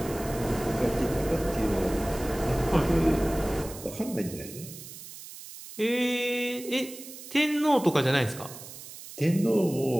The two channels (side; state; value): right; noise; hiss, 14 dB below the sound